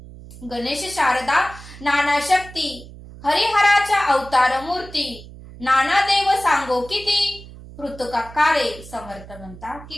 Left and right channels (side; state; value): right; noise; hum, 17 dB below the sound